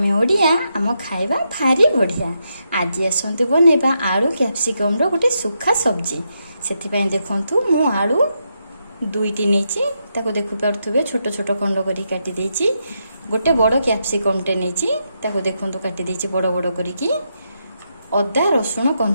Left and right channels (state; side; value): inverted; both; correlation -0.82